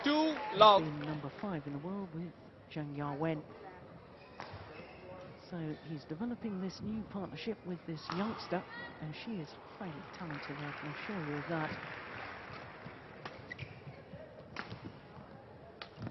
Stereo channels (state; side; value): identical; both; correlation 1.00